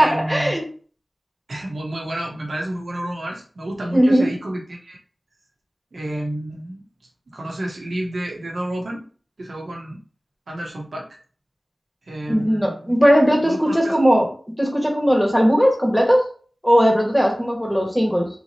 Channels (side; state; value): both; normal; correlation 0.98